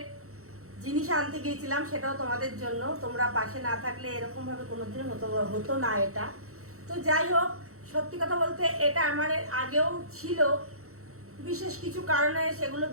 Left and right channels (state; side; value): late; left; 0.64 ms